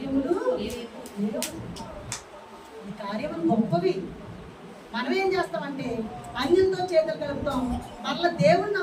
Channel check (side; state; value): both; identical; correlation 1.00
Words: లేవు, నీ కార్యములు గొప్పవి. మనం ఏం చేస్తామంటే అన్యులతో చేతులు కలుపుతాం. మరలా దేవుడిని